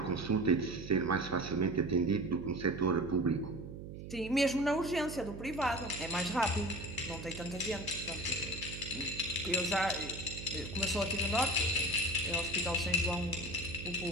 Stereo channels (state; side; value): noise; right; hum, 10 dB below the sound